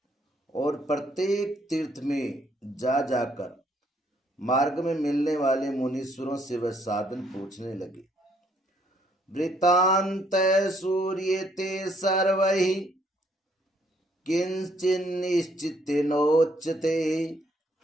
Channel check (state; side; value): normal; both; correlation 0.68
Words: और प्रत्येक तीर्थ में जा जाकर मार्ग में मिलने वाले मुनीश्वरों से वह साधन पूछने लगे। वृत्तांत सूर्यते सर्वैः किंचिन्निश्चितेनोच्यते